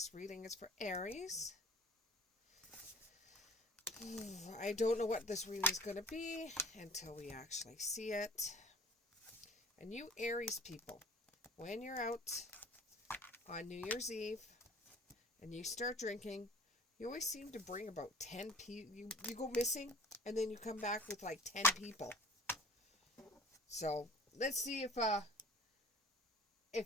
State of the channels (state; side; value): normal; both; correlation 0.47